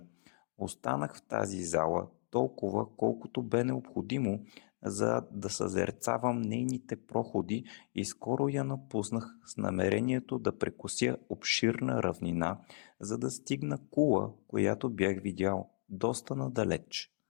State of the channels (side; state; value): right; silent; digital silence